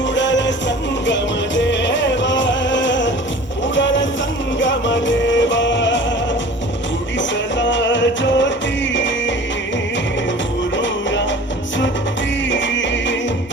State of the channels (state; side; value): normal; both; correlation 0.43